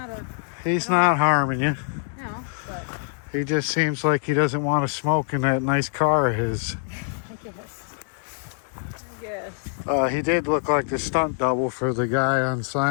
a He's not harming you. no, but He just seems like he doesn't want to smoke in that nice car of his. I guess. He did look like the stunt double for the guy on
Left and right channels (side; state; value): right; silent; digital silence